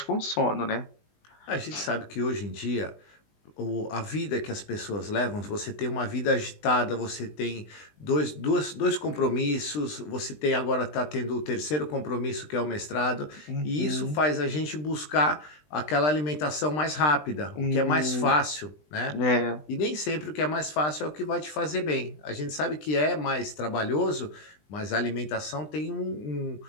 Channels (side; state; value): right; late; 20 ms